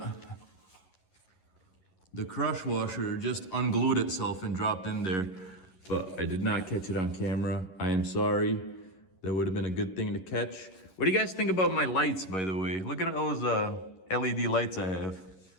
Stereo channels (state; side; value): late; right; 11 ms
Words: The crush washer just unglued itself and dropped in there, but I did not catch it on camera. I am sorry. That would have been a good thing to catch. What do you guys think about my lights, by the way? Look at those LED lights I have.